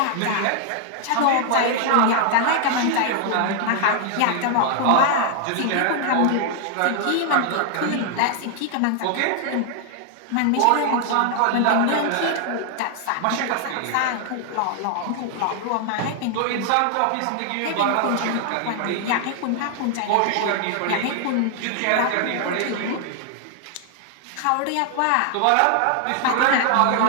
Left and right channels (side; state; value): both; different; correlation 0.00